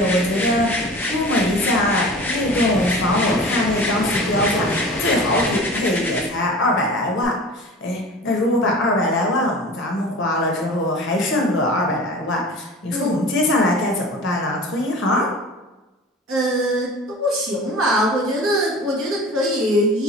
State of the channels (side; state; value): both; normal; correlation 0.38